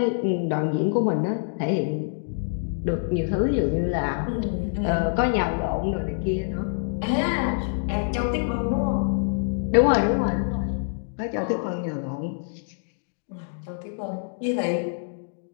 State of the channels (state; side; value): silent; right; digital silence